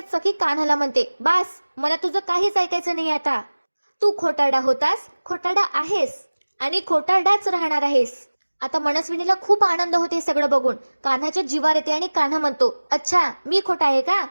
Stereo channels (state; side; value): inverted; both; correlation -1.00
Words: सखी कान्हाला म्हणते, बास, मला तुझं काहीच ऐकायचं नाही आता. तू खोटारडा होतास, खोटारडा आहेस आणि खोटारडाच राहणार आहेस. आता मनस्विनीला खूप आनंद होते सगळं बघून. कान्हाच्या जीवार येते आणि कान्हा म्हणतो, अच्छा मी खोटा आहे का,